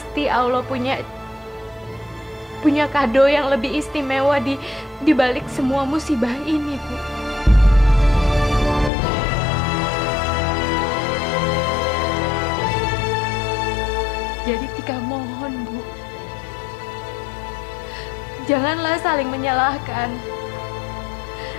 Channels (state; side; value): drops out; right; at 8.9 s